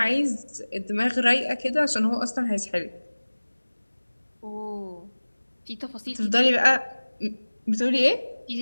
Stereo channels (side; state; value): both; inverted; correlation -1.00